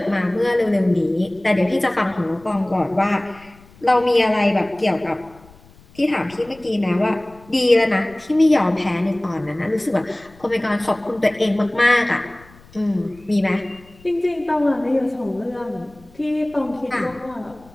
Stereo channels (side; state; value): left; noise; rumble, 26 dB below the sound